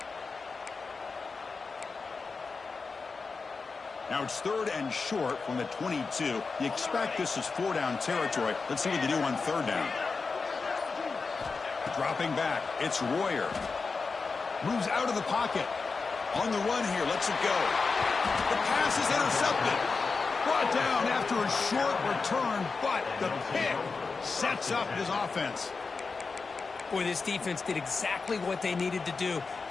Now it's 3rd and short from the 22. You expect this is 4-down territory. Let's see what they do on 3rd down. Dropping back. It's Royer. Moves out of the pocket. On the run here. Lets it go. The pass is intercepted. Brought down after a short return, but the pick sets up his offense. Boy, this defense did exactly what they needed to do.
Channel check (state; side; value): quieter; right; 4.5 dB